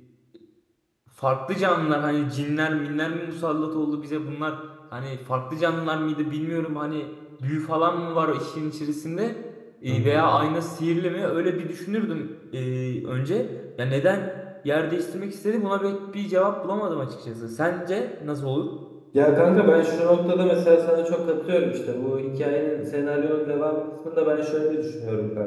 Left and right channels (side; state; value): both; identical; correlation 1.00